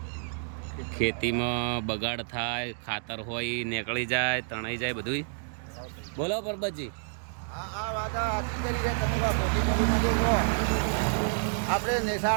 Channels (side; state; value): left; silent; digital silence